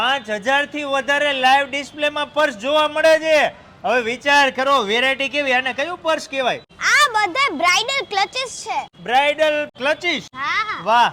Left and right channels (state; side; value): identical; both; correlation 1.00